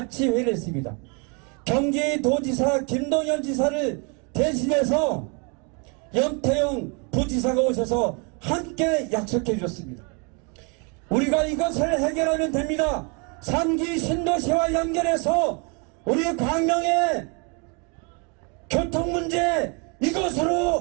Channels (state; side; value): quieter; left; 33.9 dB